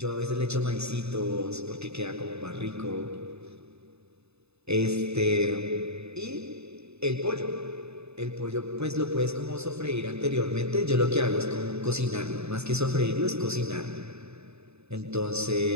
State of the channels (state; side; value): late; left; 0.80 ms